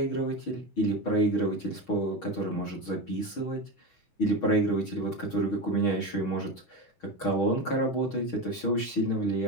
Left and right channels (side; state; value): right; late; 6.3 ms